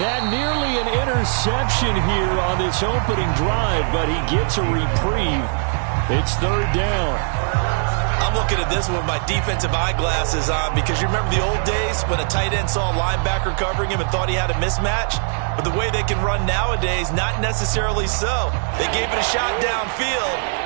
nearly an interception here on this opening drive, but he gets a reprieve. It's 3rd down. I'm looking at this with my defensive eyeglasses on because you remember the old days when a tight end saw a linebacker covering him and thought he had a mismatch? But the way they can run nowadays, not necessarily so. They gave it a shot downfield.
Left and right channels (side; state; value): left; silent; 65 dB below the other